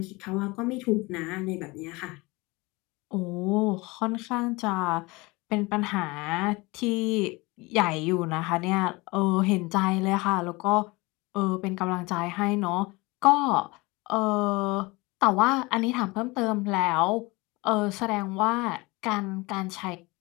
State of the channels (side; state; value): right; quieter; 23.9 dB